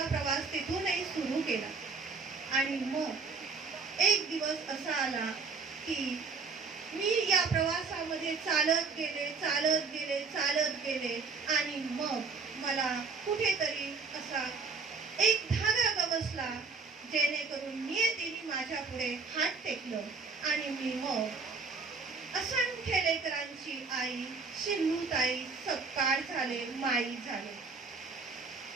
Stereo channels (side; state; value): left; quieter; 4.5 dB